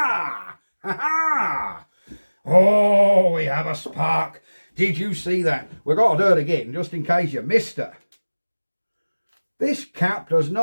Ha ha! Oh, we have a spark! Did you see that? We've got to do it again, just in case you missed it. This cap does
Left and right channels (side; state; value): both; inverted; correlation -1.00